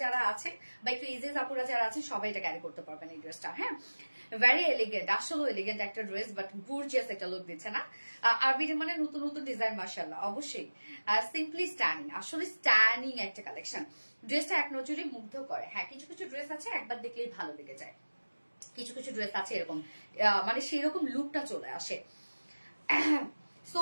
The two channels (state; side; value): inverted; both; correlation -1.00